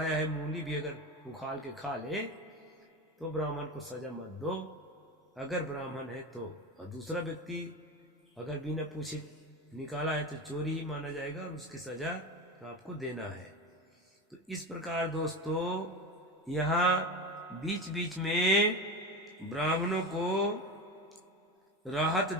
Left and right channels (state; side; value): normal; both; correlation 0.23